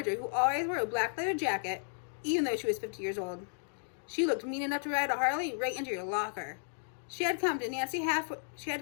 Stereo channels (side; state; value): right; silent; digital silence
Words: who always wore a black leather jacket, even though she was 50 years old. She looked mean enough to ride a Harley right into your locker. She had come to Yancey